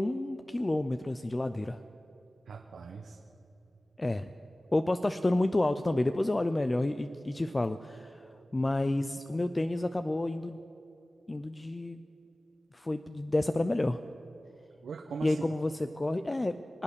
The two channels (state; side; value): normal; both; correlation 0.98